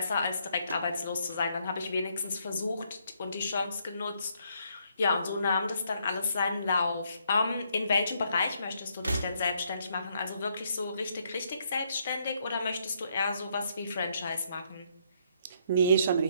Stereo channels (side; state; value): both; inverted; correlation -0.72